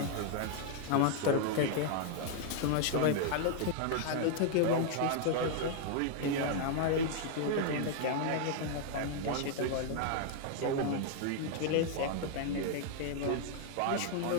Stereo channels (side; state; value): both; different; correlation 0.00